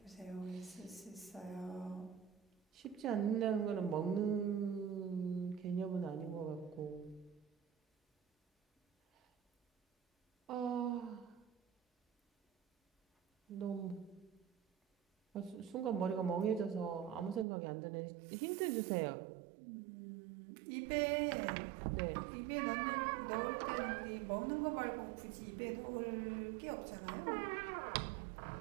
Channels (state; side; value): drops out; left; at 17.4 s